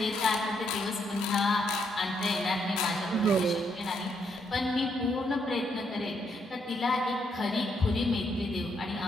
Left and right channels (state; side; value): normal; both; correlation 0.75